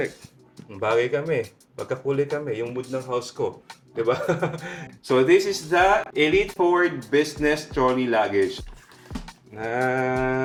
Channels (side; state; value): both; identical; correlation 1.00